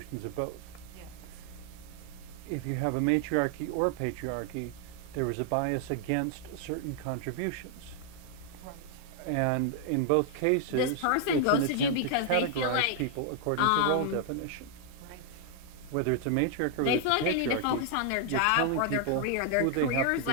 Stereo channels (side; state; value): both; different; correlation 0.00